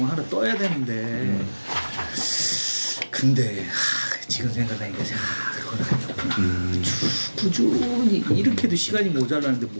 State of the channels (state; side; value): inverted; both; correlation -1.00